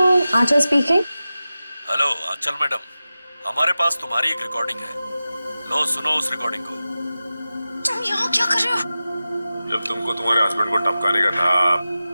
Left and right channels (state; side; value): inverted; both; correlation -0.94